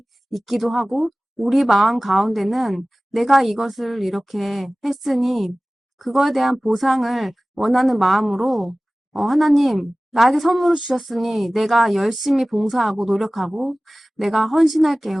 있기도 하고, 우리 마음 가운데는 내가 이것을 이렇게 했으니, 그거에 대한 보상을 원하는 마음으로, 하나님, 나에게 선물을 주셨으니 내가 열심히 봉사하고 노력하고 내가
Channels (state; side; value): normal; both; correlation 0.97